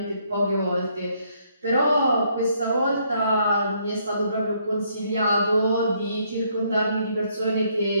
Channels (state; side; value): inverted; both; correlation -0.70